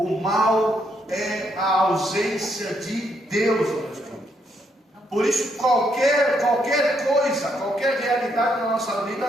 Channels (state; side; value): normal; both; correlation 0.75